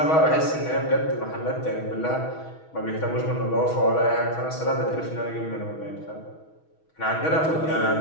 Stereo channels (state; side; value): late; right; 6.2 ms